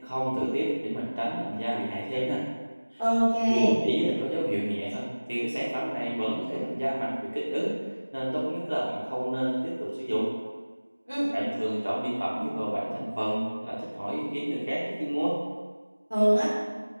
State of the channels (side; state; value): both; inverted; correlation -1.00